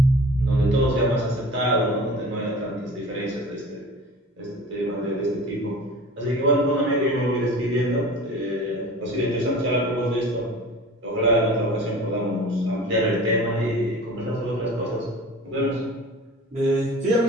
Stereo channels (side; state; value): both; normal; correlation 0.40